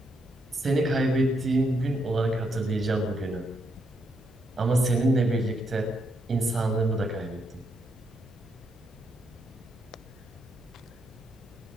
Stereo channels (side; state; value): both; normal; correlation 0.78